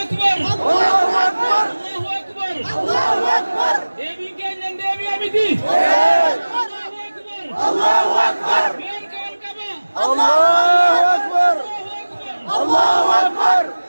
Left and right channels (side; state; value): both; inverted; correlation -1.00